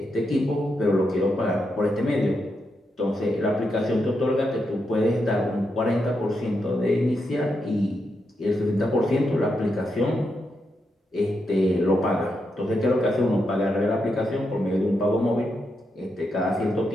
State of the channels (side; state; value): both; normal; correlation 0.83